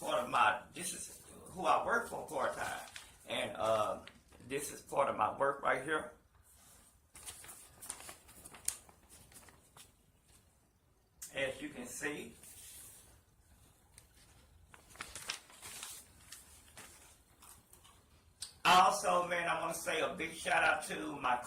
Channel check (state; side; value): identical; both; correlation 1.00